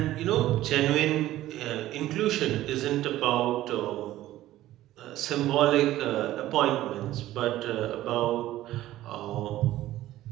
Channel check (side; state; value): left; quieter; 14.8 dB